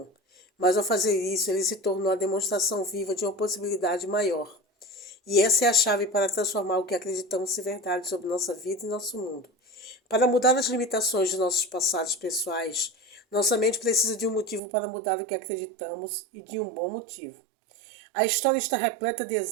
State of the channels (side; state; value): left; drops out; at 14.6 s